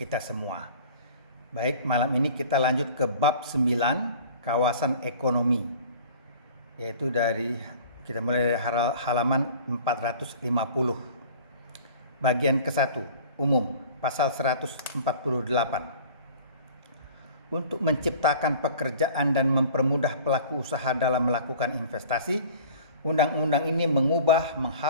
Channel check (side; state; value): both; inverted; correlation -0.45